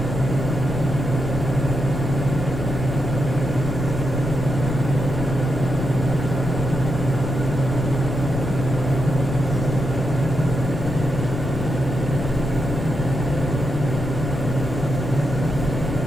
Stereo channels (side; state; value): left; noise; rumble, 5 dB below the sound